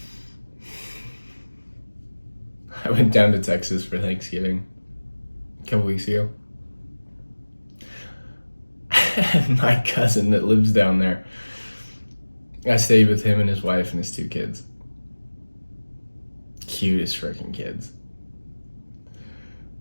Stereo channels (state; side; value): inverted; both; correlation -1.00